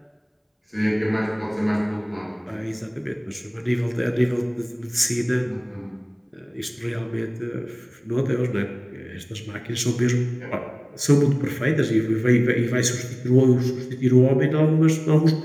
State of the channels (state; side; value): identical; both; correlation 1.00